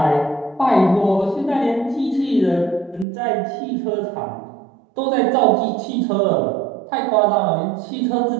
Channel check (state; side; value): drops out; left; at 3.1 s